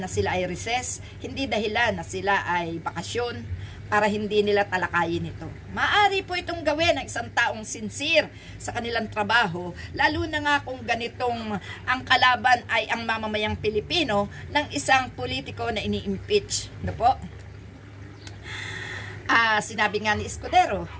sila ay recess, hindi dahilan na sila ay bakasyon para hindi nila talakayin ito. Maaari po itong gawin ng isang taong sincere sa kanilang trabaho, lalo na nga kung ganitong ang kalaban ay ang mamamayang Pilipino ng isang politiko na ini-impeach. Ano po? Sinabi nga ni Escudero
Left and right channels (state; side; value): identical; both; correlation 1.00